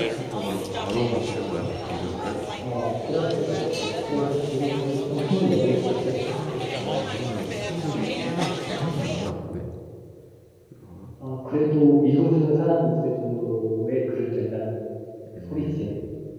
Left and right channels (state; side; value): identical; both; correlation 1.00